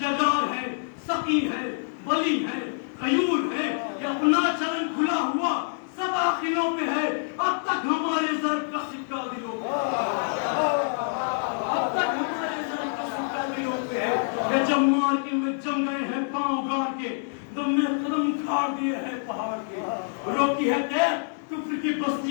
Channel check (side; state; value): right; silent; digital silence